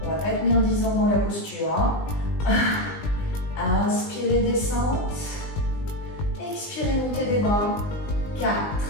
on ne va pas tenir 10 ans dans la posture. Hein? Inspirez, descente. Expirez, montez des bras. 4.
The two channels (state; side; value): late; right; 20 ms